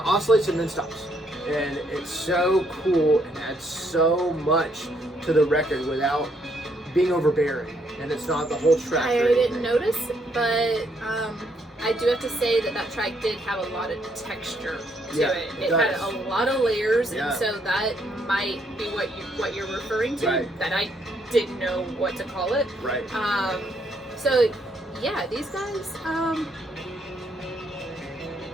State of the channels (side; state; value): both; normal; correlation 0.72